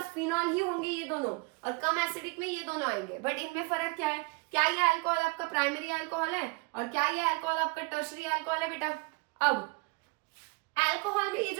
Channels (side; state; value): left; quieter; 28.3 dB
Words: फिनॉल ही होंगे ये दोनों, और कम एसिडिक में ये दोनों आएंगे। बट इनमें फर्क क्या है? क्या ये अल्कोहल आपका प्राइमरी अल्कोहल है और क्या ये अल्कोहल आपका टर्शरी अल्कोहल है बेटा? अब अल्कोहल में ये